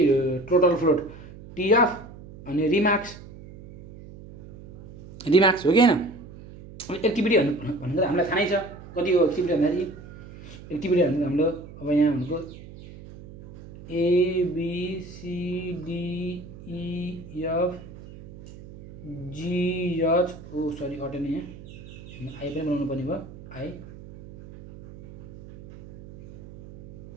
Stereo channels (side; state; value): right; noise; hum, 17 dB below the sound